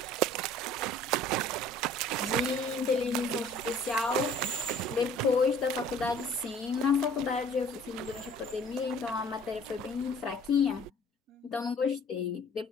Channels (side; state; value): both; normal; correlation 0.52